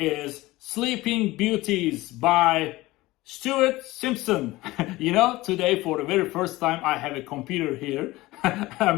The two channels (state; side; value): quieter; right; 19.1 dB